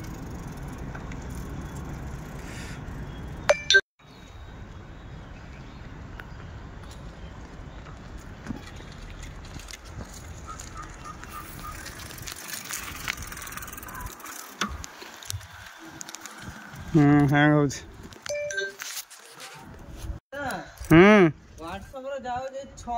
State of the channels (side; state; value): both; identical; correlation 1.00